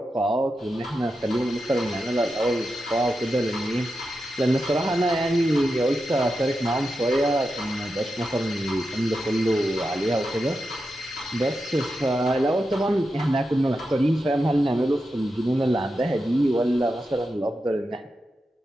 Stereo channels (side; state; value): both; normal; correlation 0.89